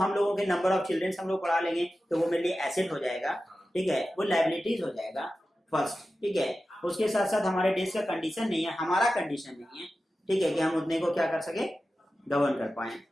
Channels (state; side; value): normal; both; correlation 0.93